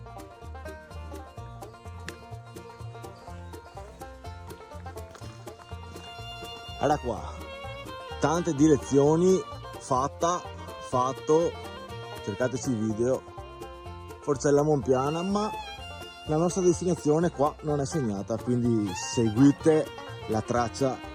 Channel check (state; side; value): identical; both; correlation 1.00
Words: Guarda qua, tante direzioni, fatto, cercateci i video, Forcella Monpiana, ma la nostra destinazione qua non è segnata, quindi seguite la traccia